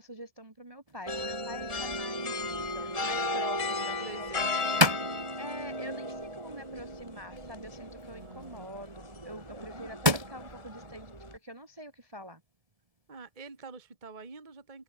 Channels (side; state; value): left; late; 1.7 ms